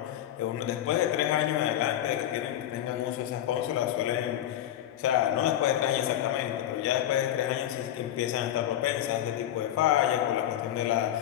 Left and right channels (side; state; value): right; quieter; 11.9 dB